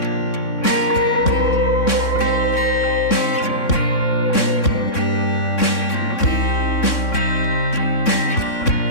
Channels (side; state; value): right; late; 3.6 ms